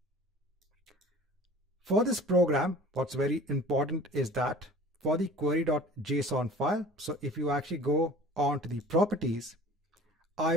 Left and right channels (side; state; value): both; normal; correlation 0.45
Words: For this program, what's very important is that for the query.json file, so if you actually go onto the properties,